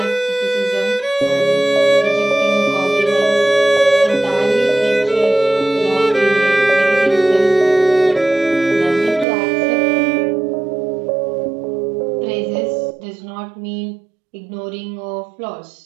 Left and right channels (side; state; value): left; drops out; at 9.2 s